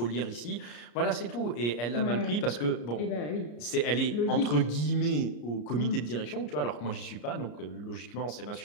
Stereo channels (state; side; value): late; right; 34 ms